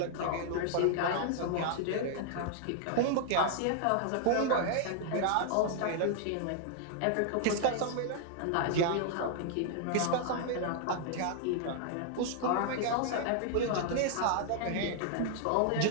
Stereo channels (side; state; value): both; different; correlation -0.01